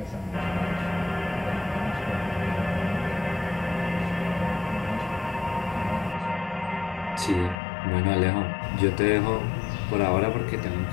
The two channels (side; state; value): right; drops out; at 7.6 s